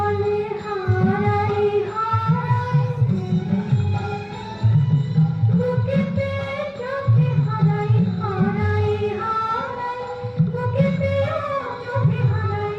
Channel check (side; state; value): both; identical; correlation 1.00